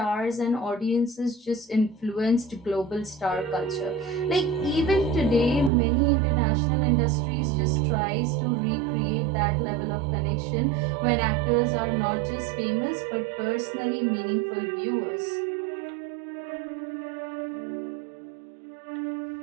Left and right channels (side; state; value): left; drops out; at 5.7 s